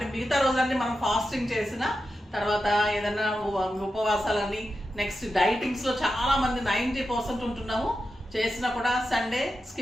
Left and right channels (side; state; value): both; normal; correlation 0.90